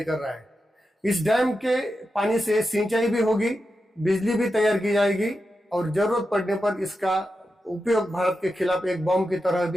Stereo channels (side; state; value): both; normal; correlation 0.89